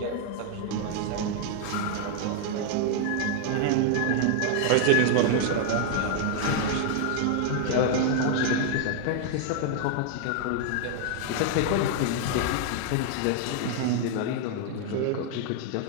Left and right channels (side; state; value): both; different; correlation 0.00